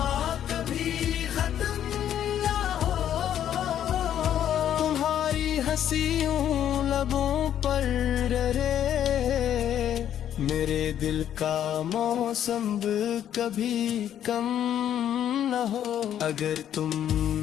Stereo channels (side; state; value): right; quieter; 10.3 dB